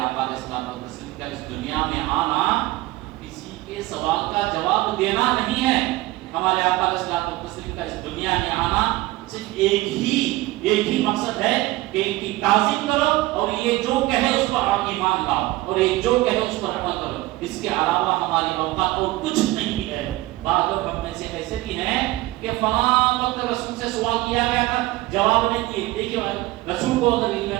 علیہ الصلوۃ والتسلیم کا اس دنیا میں آنا کسی کے سوال کا جواب دینا نہیں ہے۔ ہمارے آقا علیہ الصلوۃ والتسلیم کا اس دنیا میں آنا صرف ایک ہی مقصد ہے کہ ان کی تعظیم کرو اور یہ جو کہے اس پر آپ ایمان لاؤ اور یہ جو کہے اس پر عمل کرو، اس کے علاوہ ہماری اوقات اور کچھ نہیں ہے۔ بعض لوگ ہم میں سے ایسے بھی ہیں کہ فلاں وقت رسول سے سوال کیا گیا تھا، جواب نہیں دیے۔ دیکھیے رسول کو اگر علم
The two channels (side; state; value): left; quieter; 18.7 dB